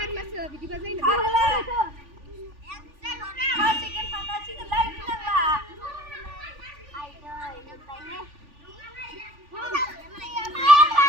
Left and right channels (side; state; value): left; late; 3.4 ms